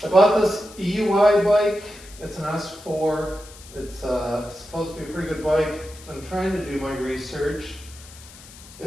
I bought this EUY bike. It's an S4. It's supposed to be a pretty good bike. I'm trying to do my research.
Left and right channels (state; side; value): noise; left; hiss, 19 dB below the sound